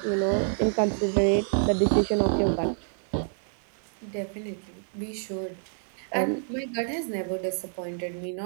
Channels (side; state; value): left; silent; 59 dB below the other